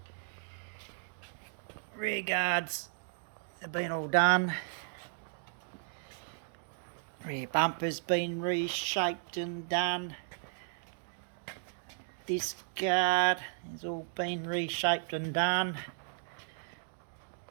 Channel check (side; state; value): left; silent; digital silence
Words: Rear guards have been all done. Rear bumper's been reshaped and done. This guard has all been reshaped and done.